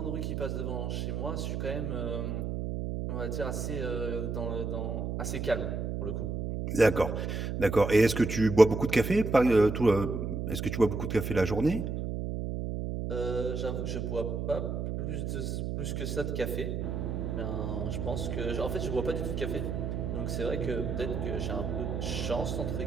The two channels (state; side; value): noise; right; hum, 2 dB below the sound